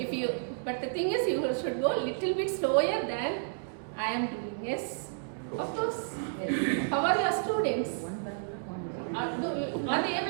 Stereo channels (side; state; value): left; silent; digital silence